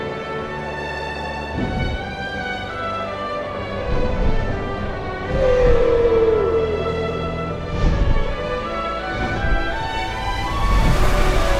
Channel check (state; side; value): identical; both; correlation 1.00